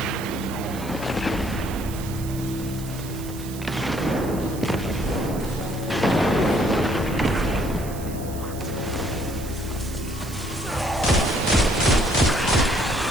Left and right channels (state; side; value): noise; right; hiss, 15 dB below the sound